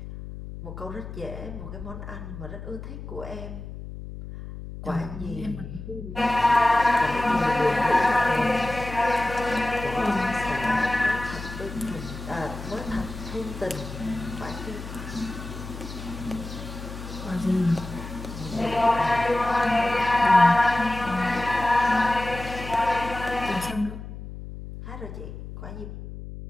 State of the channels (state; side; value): noise; left; hum, 11 dB below the sound